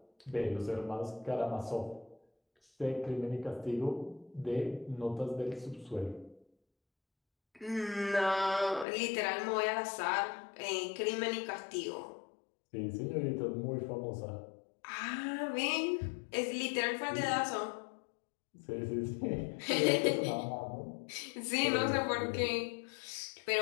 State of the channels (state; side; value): drops out; right; at 8.8 s